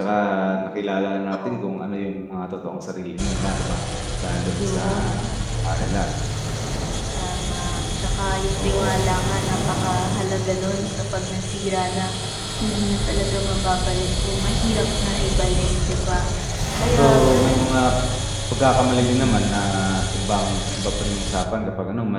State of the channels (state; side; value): identical; both; correlation 1.00